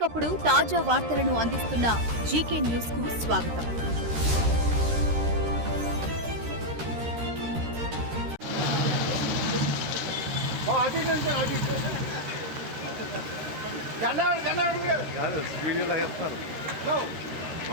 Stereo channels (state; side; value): late; left; 13 ms